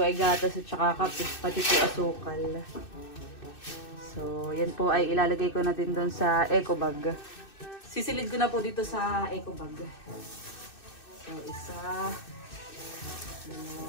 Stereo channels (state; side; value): late; right; 2.6 ms